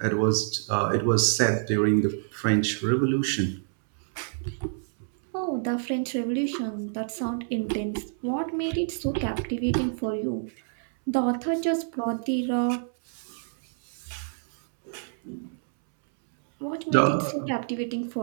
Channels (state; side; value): silent; left; 60 dB below the other